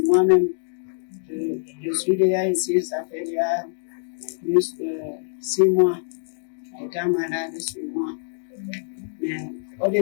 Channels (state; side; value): silent; right; digital silence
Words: moi-même. Je suis déjà ici, ça fait déjà plus de 6 mois, étant malade sur moi. Mais